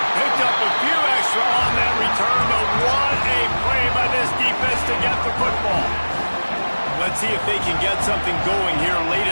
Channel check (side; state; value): both; inverted; correlation -1.00